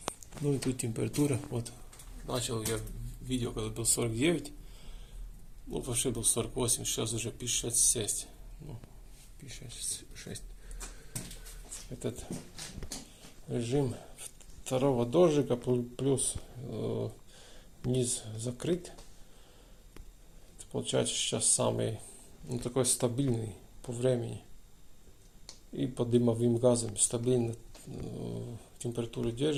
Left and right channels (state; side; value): identical; both; correlation 1.00